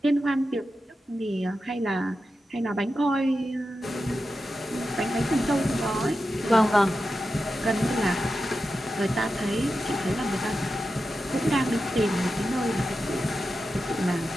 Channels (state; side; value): normal; both; correlation 0.91